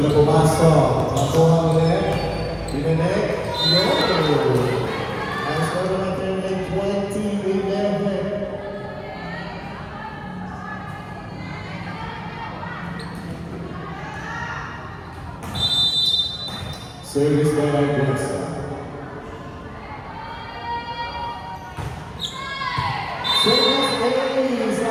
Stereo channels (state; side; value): identical; both; correlation 1.00